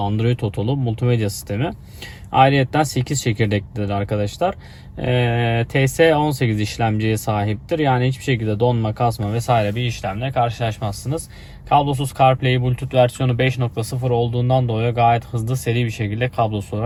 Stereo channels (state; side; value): identical; both; correlation 1.00